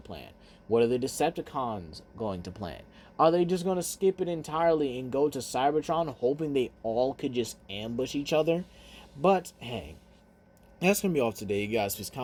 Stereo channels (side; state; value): both; identical; correlation 1.00